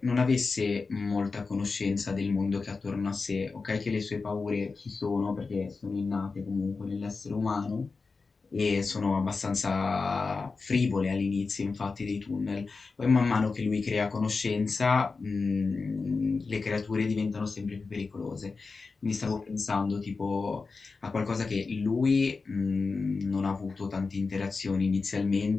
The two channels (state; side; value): quieter; right; 4.3 dB